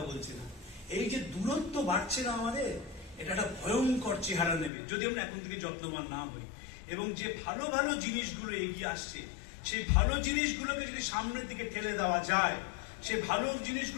বলছে না। এই যে দূরত্ব বাড়ছে না আমাদের, এটা একটা ভয়ঙ্কর চেহারা নেবে যদি আমরা এখন থেকে যত্নবান না হই। এবং যে ভালো ভালো জিনিসগুলো এগিয়ে আসছে, সেই ভালো জিনিসগুলোকে যদি সামনের দিকে ঠেলে দেওয়া যায়, সে ভালো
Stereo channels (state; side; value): drops out; right; at 4.7 s